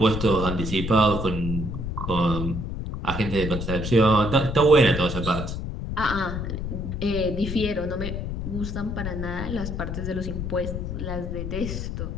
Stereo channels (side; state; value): left; noise; rumble, 4 dB below the sound